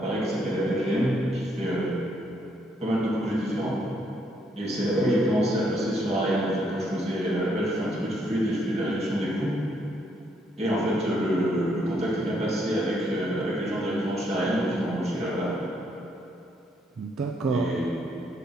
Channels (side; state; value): both; normal; correlation 0.72